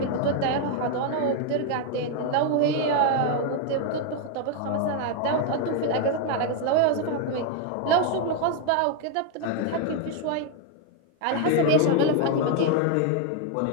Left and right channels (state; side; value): different; both; correlation 0.01